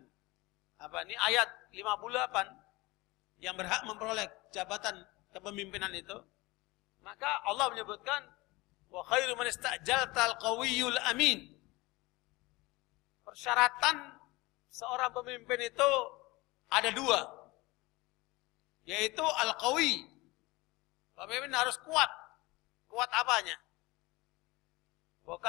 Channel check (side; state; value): right; quieter; 22.3 dB